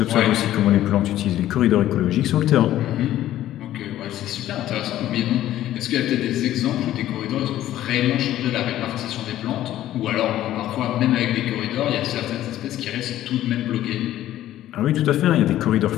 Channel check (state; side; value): quieter; right; 13.3 dB